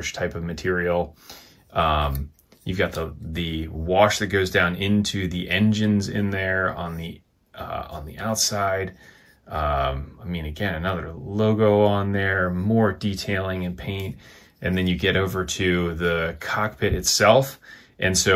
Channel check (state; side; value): identical; both; correlation 1.00